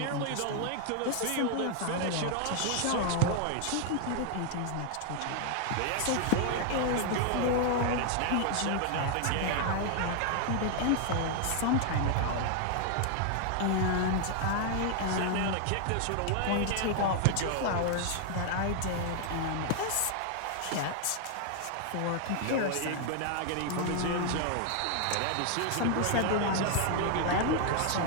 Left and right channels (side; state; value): both; different; correlation 0.00